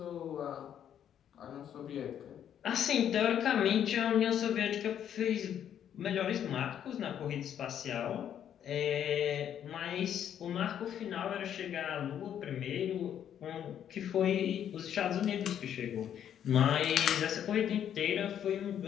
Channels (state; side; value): quieter; right; 9.6 dB